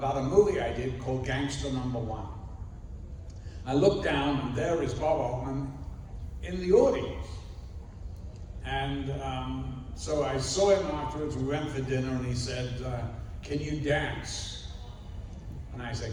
a movie I did called Gangster Number One. I looked down, and there is Bob Altman in the audience. And so I saw him afterwards. We went for dinner, and he said, "Can you dance?" And I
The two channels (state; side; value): identical; both; correlation 1.00